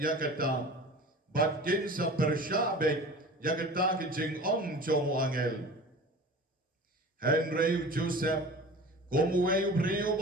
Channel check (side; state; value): both; normal; correlation 0.38